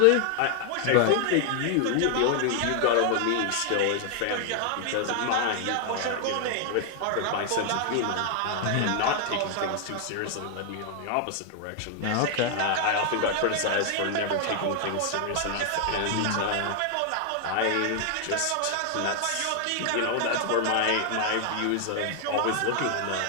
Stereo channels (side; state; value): both; different; correlation 0.00